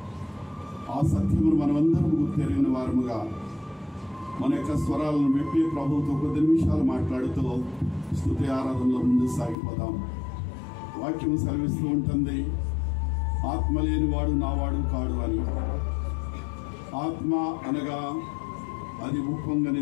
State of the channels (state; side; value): drops out; right; at 9.6 s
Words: ఆ సత్యమును మనమందరం గుర్తెరిగిన వారముగా మన యొక్క స్వరాలను విప్పి ప్రభువుతో కొద్ది నిమిషాలు మాట్లాడుతూ స్తుతి ఆరాధనలో ముందు సాగిపోదాం. వాక్యం సెలవిస్తూ ఉంటుంది, ఆత్మ లేనివాడు నావాడు కాడు అని. ఆత్మ అనగా అది